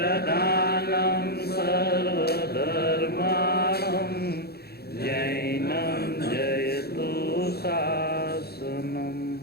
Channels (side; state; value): right; late; 0.46 ms